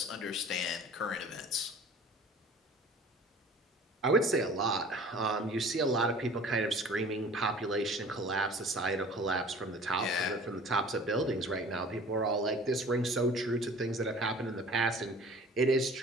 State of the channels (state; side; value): normal; both; correlation 0.46